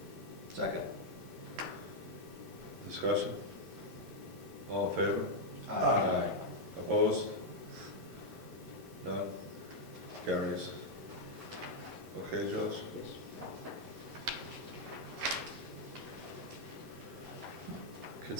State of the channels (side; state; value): both; normal; correlation -0.02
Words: second. Discussion? All in favor? Aye. Opposed? None? Carries. Okay, Josh? Yes.